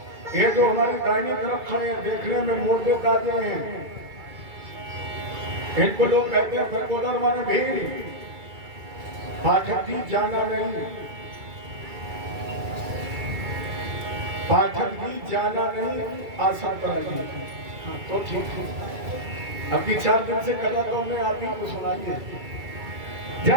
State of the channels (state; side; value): late; left; 2.3 ms